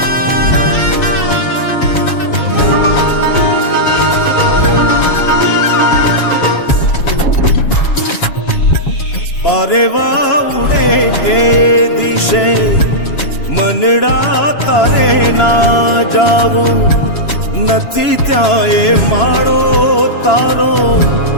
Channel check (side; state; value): right; late; 7.2 ms